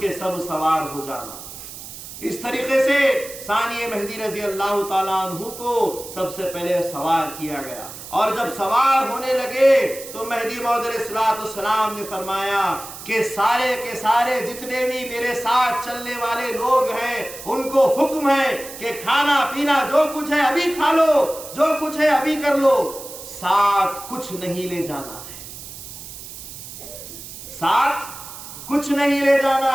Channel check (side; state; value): right; noise; hiss, 13 dB below the sound